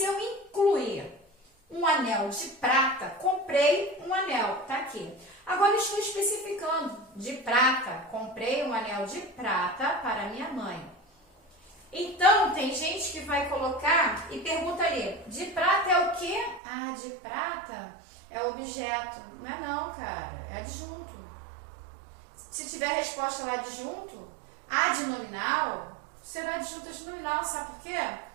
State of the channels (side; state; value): left; drops out; at 16.6 s